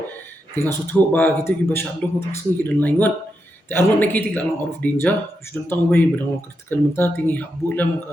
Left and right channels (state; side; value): normal; both; correlation 0.85